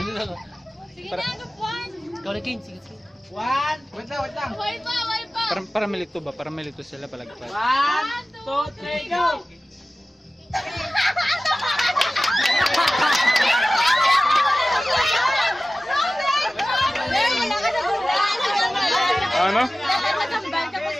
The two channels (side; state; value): both; normal; correlation 0.96